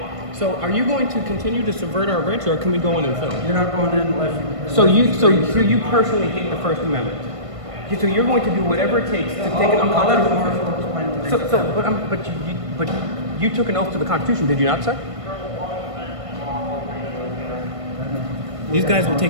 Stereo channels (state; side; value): late; left; 1.5 ms